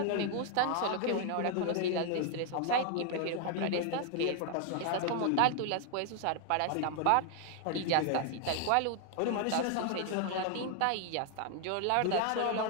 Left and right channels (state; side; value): different; both; correlation 0.00